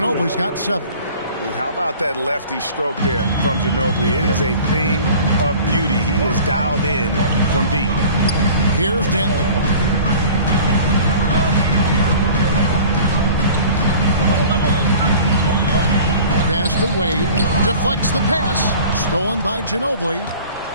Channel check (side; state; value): both; inverted; correlation -0.44